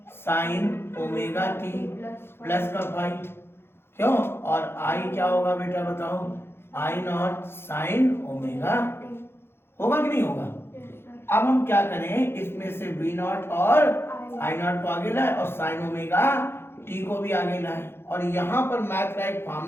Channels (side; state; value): right; late; 0.11 ms